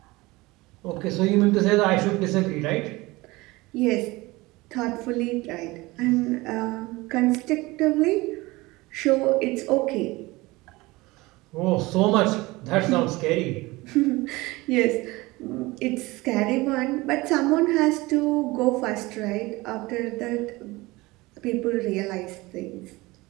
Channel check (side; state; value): left; quieter; 21.5 dB